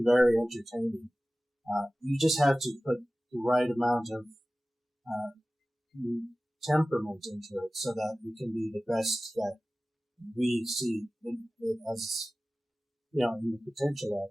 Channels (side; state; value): both; normal; correlation 0.97